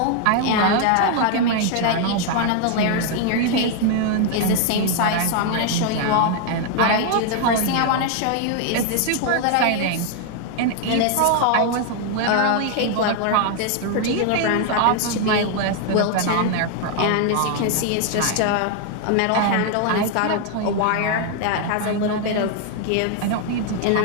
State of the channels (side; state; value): both; different; correlation 0.00